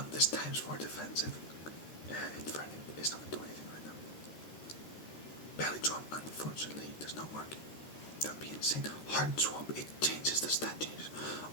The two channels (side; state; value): right; late; 13 ms